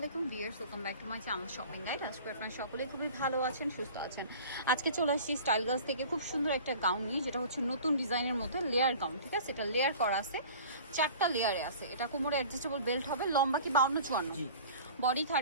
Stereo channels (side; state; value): both; inverted; correlation -0.43